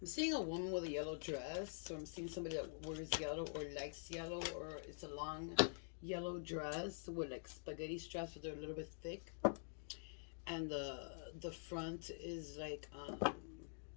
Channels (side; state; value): right; silent; digital silence